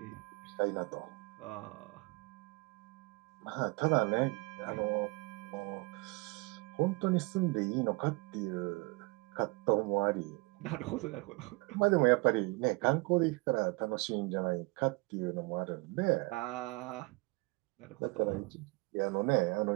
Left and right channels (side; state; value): left; quieter; 26.6 dB